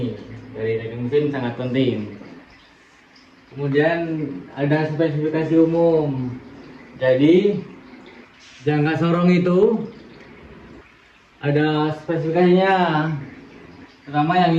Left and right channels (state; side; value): identical; both; correlation 1.00